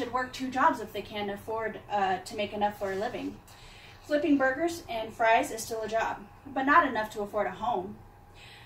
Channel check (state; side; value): identical; both; correlation 1.00